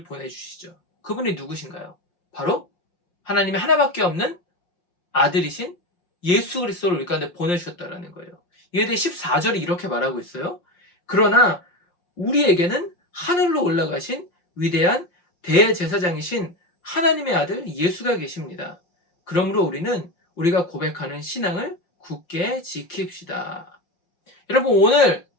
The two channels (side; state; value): right; late; 5.7 ms